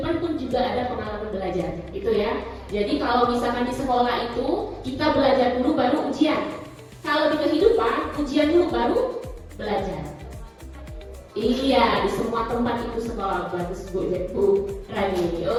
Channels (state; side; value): identical; both; correlation 1.00